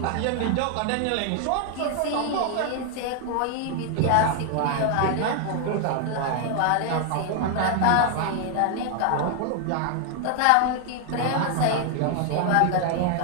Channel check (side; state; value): both; different; correlation 0.00